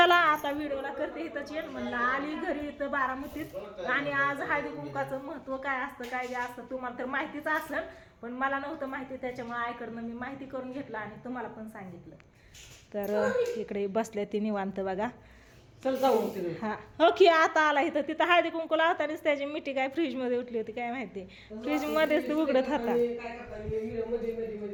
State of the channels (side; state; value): both; identical; correlation 1.00